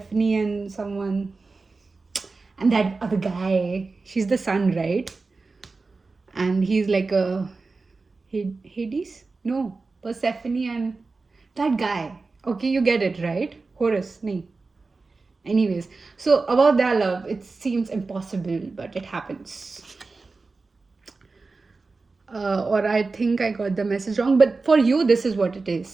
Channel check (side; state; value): left; quieter; 3.9 dB